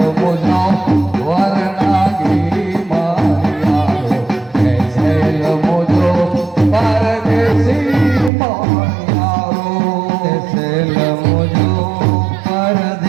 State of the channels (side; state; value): left; drops out; at 8.3 s